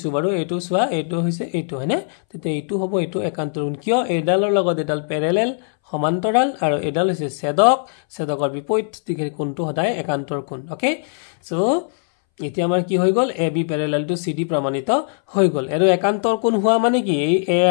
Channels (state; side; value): silent; right; 63 dB below the other